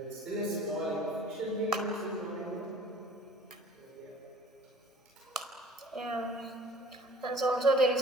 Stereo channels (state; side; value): normal; both; correlation 0.48